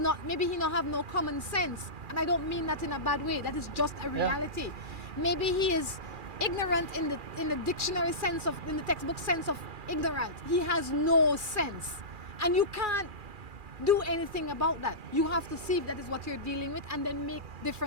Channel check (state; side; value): late; left; 2.4 ms